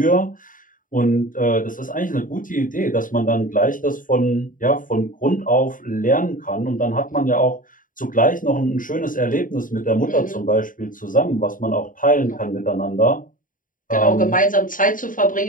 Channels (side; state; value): right; late; 0.39 ms